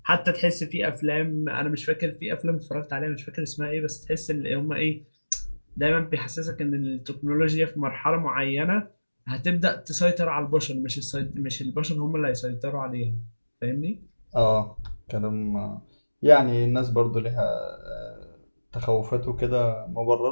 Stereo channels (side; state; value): both; inverted; correlation -1.00